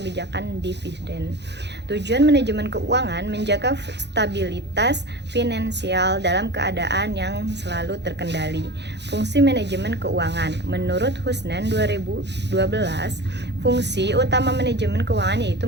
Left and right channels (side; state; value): left; late; 0.50 ms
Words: dividen. Tujuan manajemen keuangan menjaga stabilitas finansial dalam keadaan yang selalu terkendali. Fungsi manajemen keuangan. Menurut Husnan 2012, fungsi utama manajemen keuangan